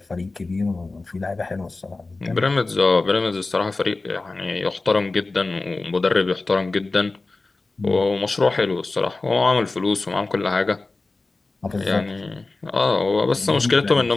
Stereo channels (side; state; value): right; quieter; 3.4 dB